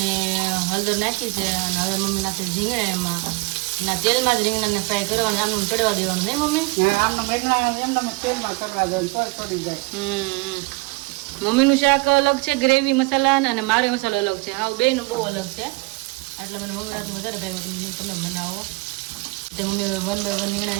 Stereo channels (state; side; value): quieter; left; 26.9 dB